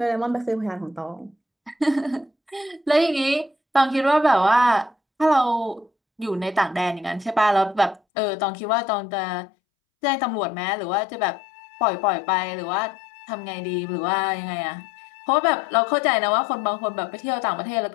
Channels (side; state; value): right; drops out; at 8.0 s